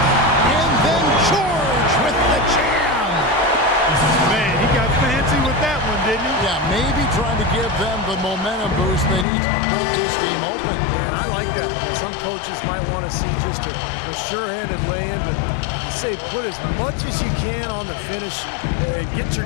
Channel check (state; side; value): drops out; right; at 9.2 s